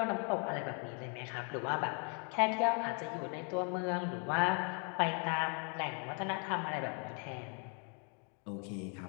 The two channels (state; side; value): quieter; right; 38.9 dB